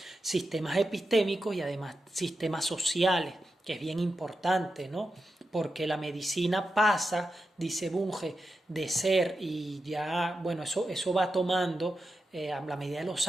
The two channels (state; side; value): normal; both; correlation 0.89